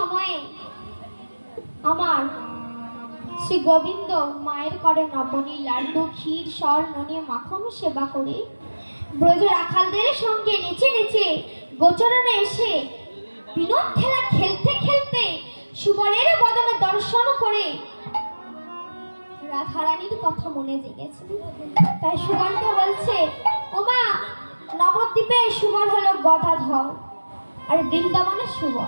আমার শ্রী গোবিন্দ মায়ের করে নবনী লাড্ডু, ক্ষীর, স্বর্ণ নিয়ে মাখন সেবা করে ব্রজ রাখালদের সঙ্গে নেচে নেচে গোচরণে এসে বিনোদ খেলা খেলতে খেলতে সুবলের বদনে দর্শন করে রাধারানীর কথা মনে জেগেছে। তাই সুবলকে বলছে, ওমা, নবদ্বীপে সুবল হলো গদাধর আর বৃন্দাবনে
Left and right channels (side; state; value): both; inverted; correlation -1.00